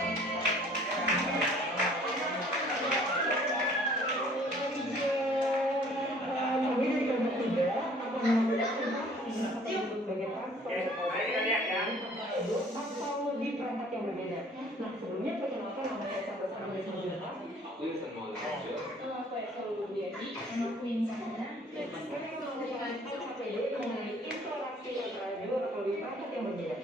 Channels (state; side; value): normal; both; correlation 0.55